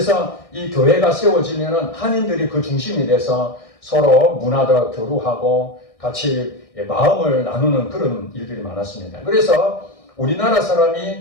이 교회가 세워지면은 한인들이 그 중심이 돼서 서로 문화도 교류하고 같이 마음을 나누는 그런 일들이 많았습니다. 그래서 우리나라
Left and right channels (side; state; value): right; late; 1.6 ms